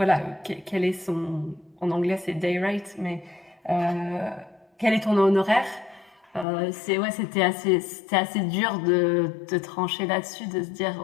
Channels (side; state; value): right; drops out; at 6.5 s